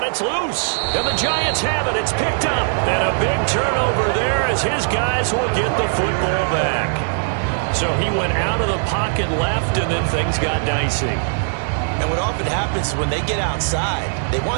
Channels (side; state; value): left; silent; digital silence